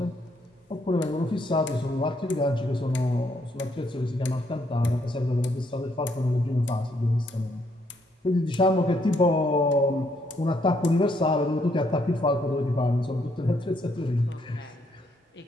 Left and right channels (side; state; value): both; normal; correlation 0.72